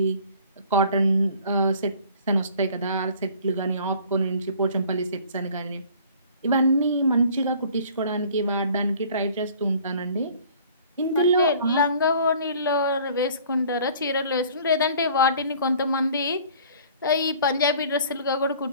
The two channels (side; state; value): both; inverted; correlation -0.51